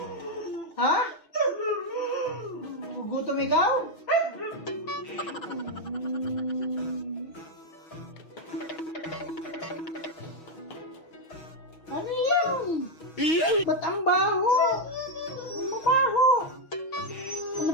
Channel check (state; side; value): late; right; 6.2 ms